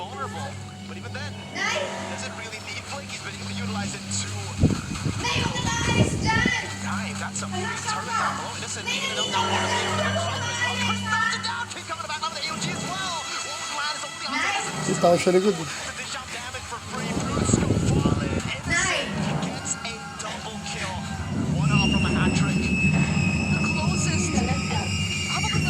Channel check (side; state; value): both; identical; correlation 1.00